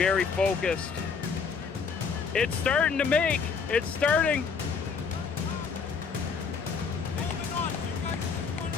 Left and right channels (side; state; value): right; quieter; 5.6 dB